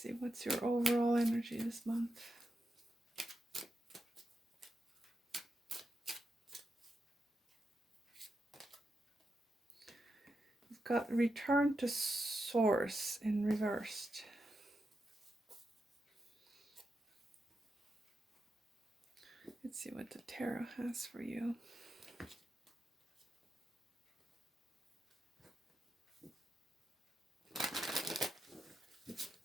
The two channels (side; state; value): both; normal; correlation 0.86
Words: see, what's your overall energy this month? We've got Return to Source in reversed. Let's see what the tarot has for you.